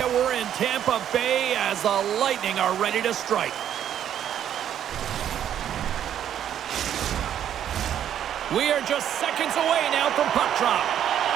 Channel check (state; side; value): quieter; left; 10.1 dB